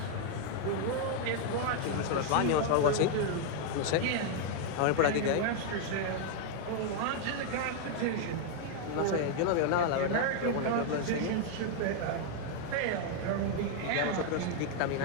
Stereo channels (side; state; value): both; different; correlation 0.00